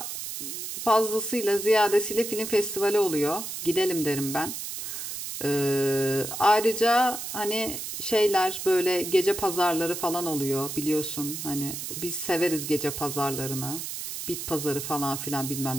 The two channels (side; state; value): right; noise; hiss, 6 dB below the sound